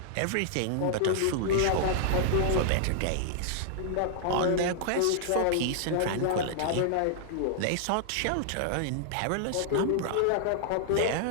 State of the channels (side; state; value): both; different; correlation -0.01